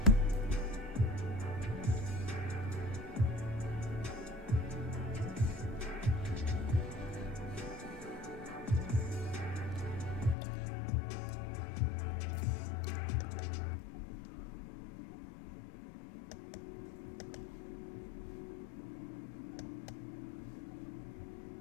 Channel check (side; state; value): right; drops out; at 10.4 s